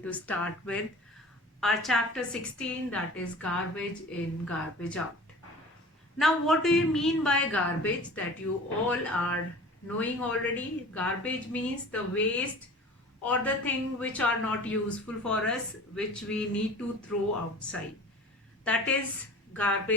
to start with our chapter 16, that is garbage in, garbage out. Now, what do you mean by garbage? That you all are knowing already. Garbage means the waste or the thing which are not useful for us, which we need to throw outside. That is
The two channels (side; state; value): both; normal; correlation 0.41